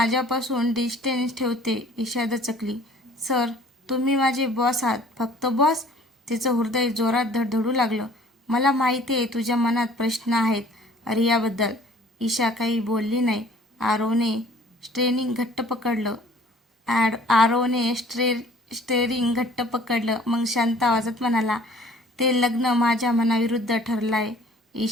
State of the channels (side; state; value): both; normal; correlation 0.53